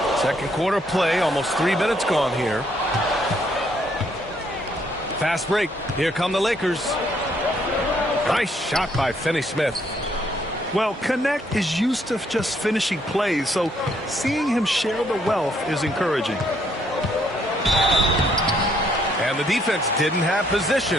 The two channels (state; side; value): normal; both; correlation 0.69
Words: Second quarter play, almost 3 minutes gone here. Fast break. Here come the Lakers. Nice shot by Finney-Smith. Well, Connect is used to just finishing plays, so seeing him share the wealth is encouraging. And the defense didn't have